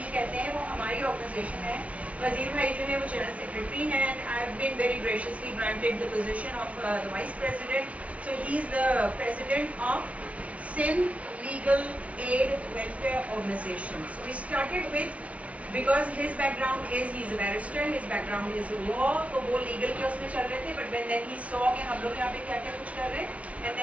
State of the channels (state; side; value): late; left; 0.065 ms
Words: कहते हैं, वो हमारी ऑर्गेनाइजेशन है। वज़ीर भाई जो है वो जनरल सेक्रेटरी हैं, and I have been very graciously granted the position of the vice president, so he is the president of Sindh legal aid welfare organisation. So we started with, because his background is he's a barrister, his background is law, तो वो legal के उसमें चल रहे थे, but when then he saw कि हम लोग यहाँ पे क्या क्या कुछ कर रहे हैं, and